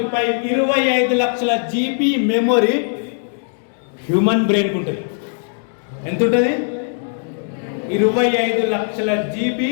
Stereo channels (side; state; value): right; silent; digital silence